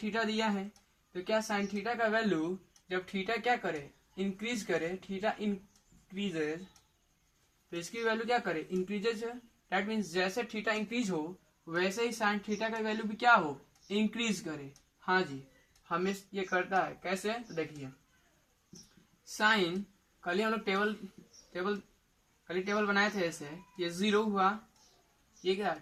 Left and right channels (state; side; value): identical; both; correlation 1.00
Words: थीटा दिया है तो क्या साइन थीटा का वैल्यू जब थीटा क्या करे इंक्रीज करे, थीटा इंक्रीजेज, तो इसकी वैल्यू क्या करे इंक्रीजेज है। दैट मीन्स जैसे थीटा इंक्रीज हो वैसे ही साइन थीटा का वैल्यू भी क्या हो इंक्रीज करे। हाँ जी, हमें ये करता है कैसे, तो देखिए साइन कल ही हम लोग टेबल बनाए थे ऐसे, ये 0 हुआ, ये क्या